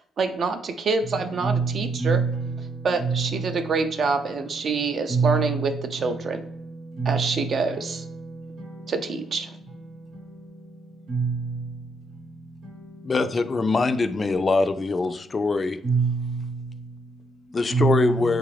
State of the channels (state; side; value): normal; both; correlation 0.74